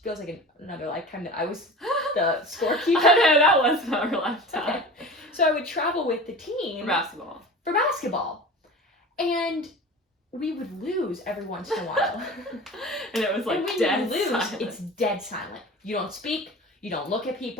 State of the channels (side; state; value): both; normal; correlation 0.35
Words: feels like another lifetime, that I was the scorekeeper. I know, that was not our lifetime. Okay. So I would travel with the team. For basketball. And we would lose every once in a while. And it was like dead silent. It's dead silent. You don't speak. You don't look at